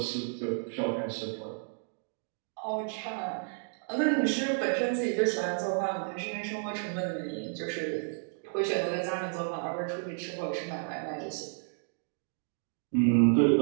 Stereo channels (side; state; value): left; silent; 57 dB below the other